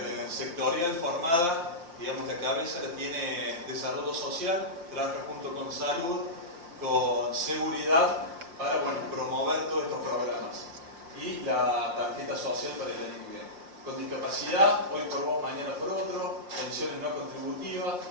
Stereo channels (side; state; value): left; late; 5.7 ms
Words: formada, digamos, la cabeza la tiene desarrollo social, trabaja junto con salud, con seguridad, para, bueno, promover todos estos programas. Y la tarjeta social para el año que viene. Con discapacidad, hoy por vos, mañana por otro, pensiones no contributivas,